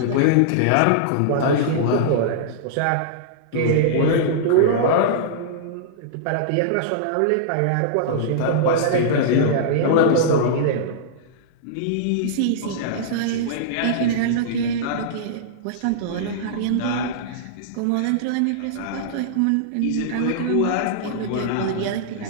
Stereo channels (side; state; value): both; different; correlation -0.02